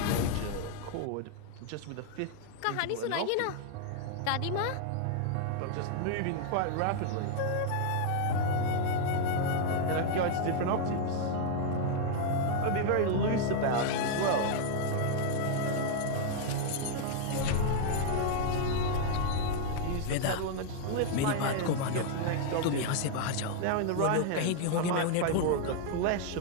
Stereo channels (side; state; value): both; different; correlation 0.00